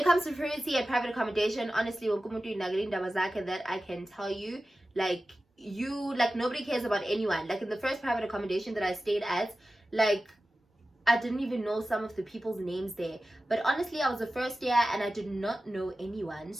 comes to privacy and private accommodation, honestly, that I can tell you, like, nobody cares about anyone. Like, in the first private accommodation that I stayed at, like, I didn't even know some of the people's names there. But honestly, I was the first year and I did not know anyone,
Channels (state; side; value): normal; both; correlation 0.95